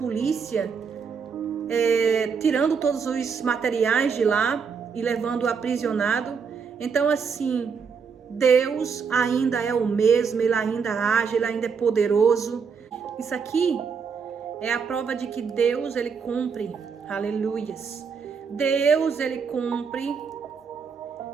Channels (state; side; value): quieter; left; 6.0 dB